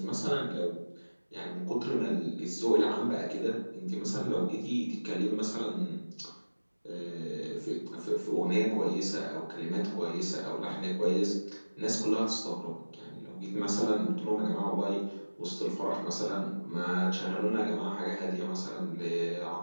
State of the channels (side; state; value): both; inverted; correlation -1.00